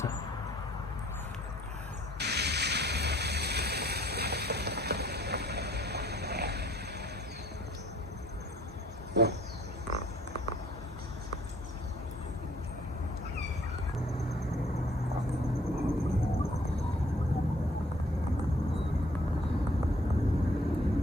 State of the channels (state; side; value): normal; both; correlation 0.60